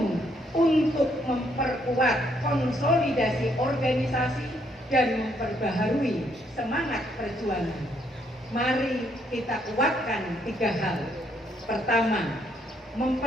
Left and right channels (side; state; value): both; normal; correlation 0.71